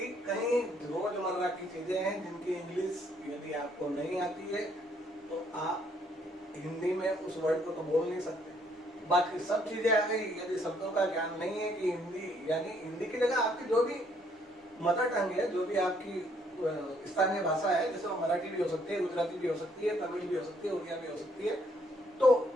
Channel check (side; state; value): both; normal; correlation 0.67